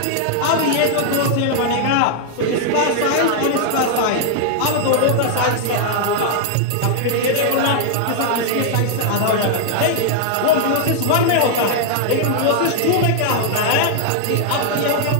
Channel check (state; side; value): different; both; correlation 0.00